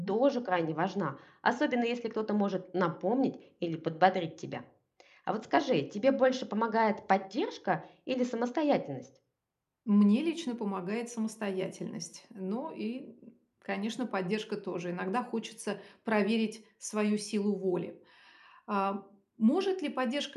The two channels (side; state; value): both; identical; correlation 1.00